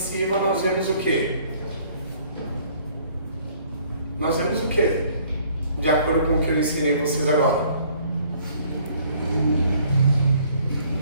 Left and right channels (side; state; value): both; inverted; correlation -0.59